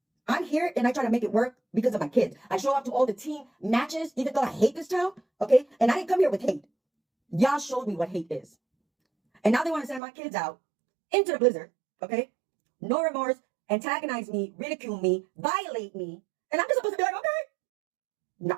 I'm here and I try to make it work because of my kids. I show up to all the team matches, even though I hate this town, okay? And I didn't come here with hate. Y'all showed me what hate is. And now they want to send my kids out into the blizzard, okay? No remorse, antagonize me, ridicule me, violate me. And I'm just supposed to be like, okay. No,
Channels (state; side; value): drops out; left; at 10.0 s